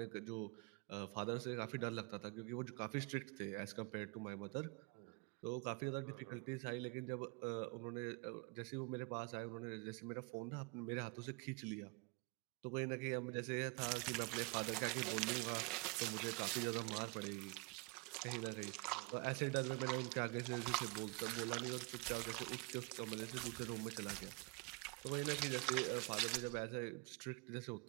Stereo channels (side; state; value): left; quieter; 30.3 dB